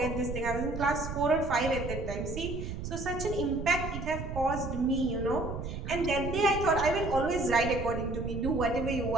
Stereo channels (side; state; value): right; noise; rumble, 6 dB below the sound